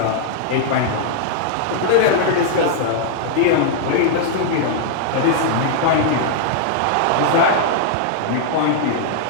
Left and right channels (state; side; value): different; both; correlation -0.01